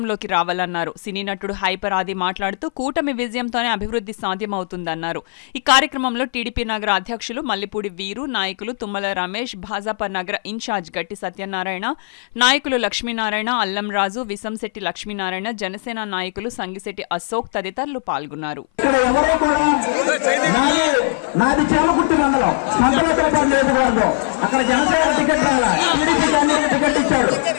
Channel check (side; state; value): right; silent; 58 dB below the other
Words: రావాలన్నారు. సినీ నటుడు హైపర్ ఆది మాట్లాడుతూ కూటమి విజయంతోనే అభివృద్ధి సాధ్యమవుతుందన్నారు. ఈ కార్యక్రమంలో టీడీపీ నగర అధ్యక్షులు మల్లిపూడి వీరు, నాయకులు తుమ్మల రమేష్, భాజపా నగర ఇన్ఛార్జ్ గట్టి సత్యనారాయణ, నాయకులు లక్ష్మీనారాయణ, అల్లం రాజు, విసంశెట్టి లక్ష్మీనారాయణ, జనసేన నాయకులు సంగిశెట్టి అశోక్ తదితరులు పాల్గొన్నారు.